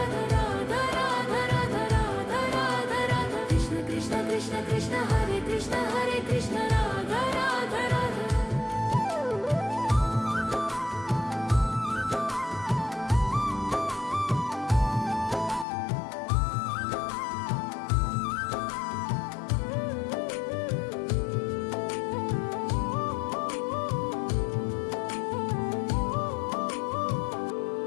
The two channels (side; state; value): right; drops out; at 15.7 s